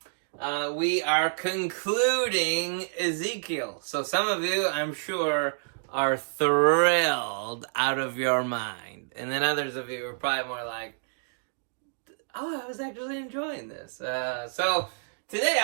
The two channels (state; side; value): silent; left; digital silence